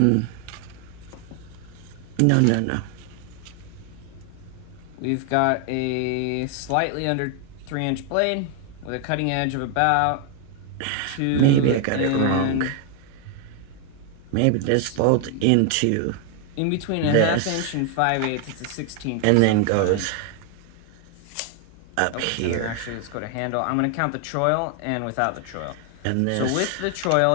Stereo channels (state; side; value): different; both; correlation 0.00